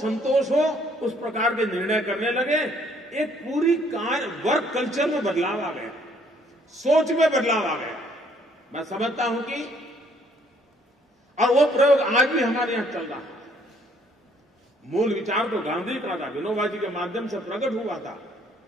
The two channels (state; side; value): normal; both; correlation 0.64